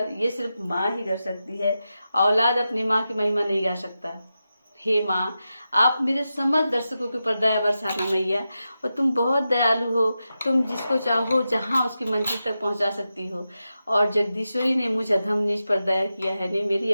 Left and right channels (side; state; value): both; inverted; correlation -0.90